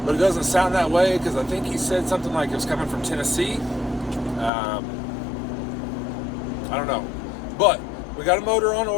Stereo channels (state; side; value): drops out; right; at 4.5 s